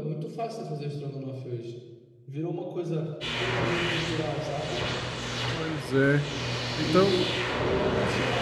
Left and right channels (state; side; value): identical; both; correlation 1.00